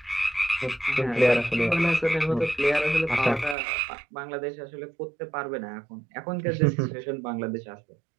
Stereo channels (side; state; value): left; drops out; at 3.6 s